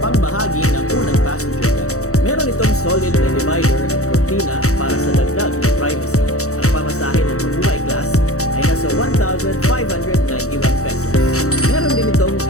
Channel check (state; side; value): late; right; 0.65 ms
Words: bahagi ng unang passenger deck. Meron itong solid na divider at cortina para sa dagdag na privacy. Ang pamasahe ng mabuhay class ay nasa 1,591 pesos. Meron din itong